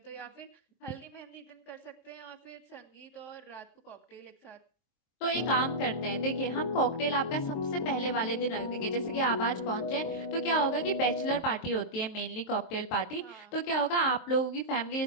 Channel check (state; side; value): late; right; 23 ms